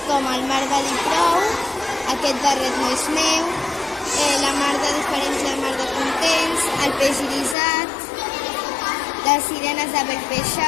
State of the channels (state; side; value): drops out; right; at 7.6 s